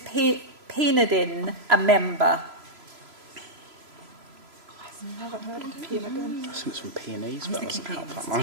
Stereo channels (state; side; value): late; left; 3.0 ms